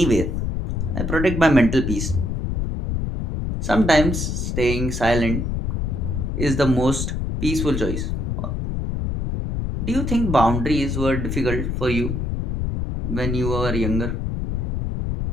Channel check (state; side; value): noise; left; rumble, 1 dB below the sound